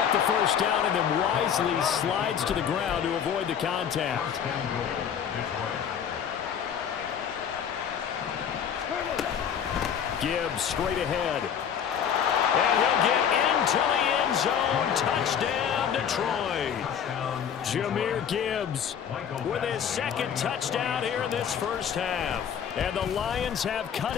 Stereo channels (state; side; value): quieter; right; 8.2 dB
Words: the first down and then wisely slides to the ground to avoid the contact. Gibbs straight ahead. And he'll get into the end zone. Touchdown, Detroit. Jahmyr Gibbs with his second touchdown here in this first half. And the Lions have cut